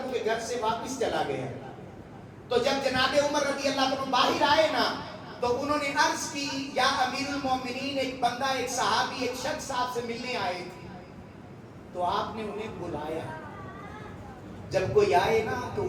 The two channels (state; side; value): identical; both; correlation 1.00